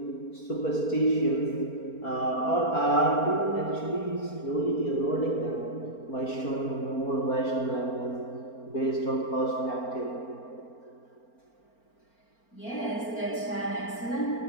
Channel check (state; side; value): late; right; 4.4 ms